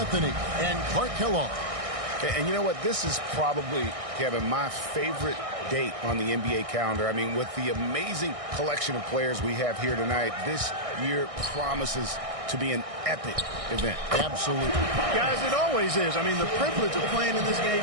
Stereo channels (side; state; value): left; late; 1.6 ms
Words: and Clark Kellogg. And you know what? This is probably, Kevin, my favorite date on the NBA calendar. I mean, with the amazing collection of players we have here tonight, this year promises to be an epic event. Absolutely. Guys, it always is. I mean, the privilege of playing in this game